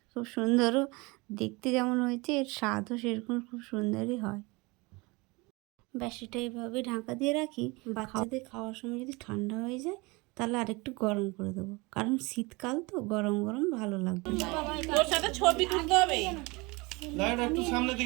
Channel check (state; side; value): quieter; left; 25.4 dB